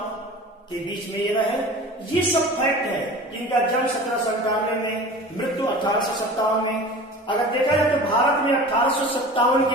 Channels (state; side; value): normal; both; correlation 0.38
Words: के बीच में ये रहे। ये सब फैक्ट है। इनका जन्म 1797 में, मृत्यु 1857 में। अगर देखा जाए तो भारत में 1857